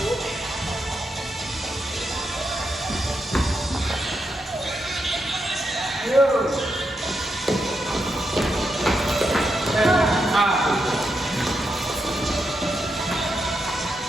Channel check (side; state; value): both; normal; correlation 0.84